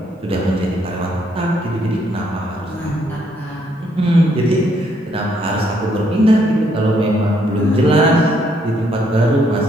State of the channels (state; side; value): normal; both; correlation 0.71